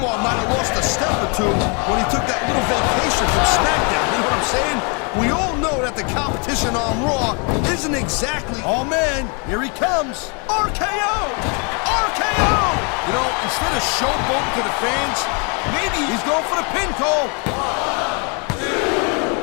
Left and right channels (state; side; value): quieter; right; 34.8 dB